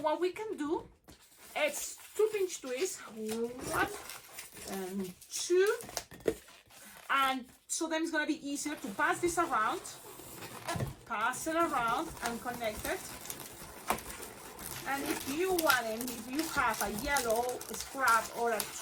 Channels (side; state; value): both; identical; correlation 1.00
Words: we can do, it's 2 pinch twists, 1 and 2, and so then it's gonna be easier to pass this around, pass it around and connect it. And if you want it, if you have a yellow scrap or a